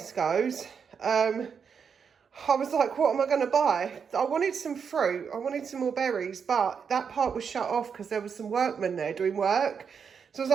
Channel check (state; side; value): quieter; left; 6.6 dB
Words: I was like, what am I going to buy? I wanted some fruit, I wanted some more berries, but that part was shut off because there was some workmen there doing work. So I was